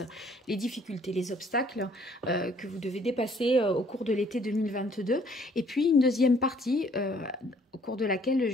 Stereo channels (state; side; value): normal; both; correlation 0.61